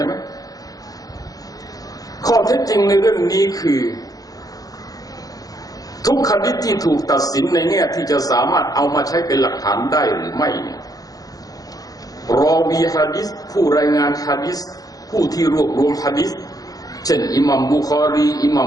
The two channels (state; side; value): late; right; 0.18 ms